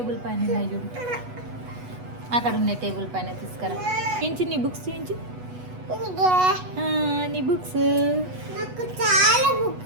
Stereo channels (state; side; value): late; left; 8.1 ms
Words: పైన ఉన్నాయి చూడు, అక్కడ ఉన్నాయి టేబుల్ పైన, తీసుకురా. చూపించి నీ బుక్స్, చూపించి నీ బుక్స్. నాకు చాలా